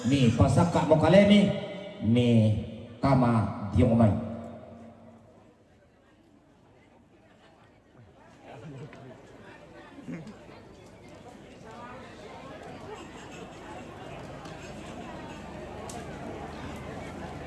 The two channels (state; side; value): identical; both; correlation 1.00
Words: ni pasak kak mokalemi ni kama dia momai